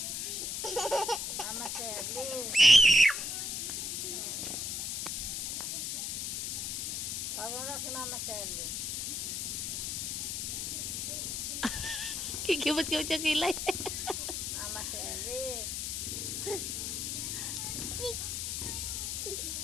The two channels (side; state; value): left; noise; hiss, 2 dB below the sound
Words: Mama said, Liz. Tawag mo lang si Mama Sally. Kikibot-kibot yung kilay. Mama Sally.